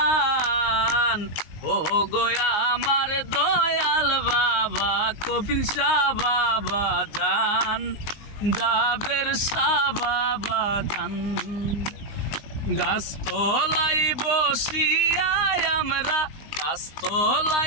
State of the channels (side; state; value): right; late; 19 ms